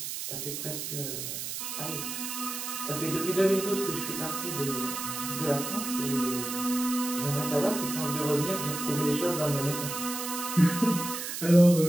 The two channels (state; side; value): noise; right; hiss, 5 dB below the sound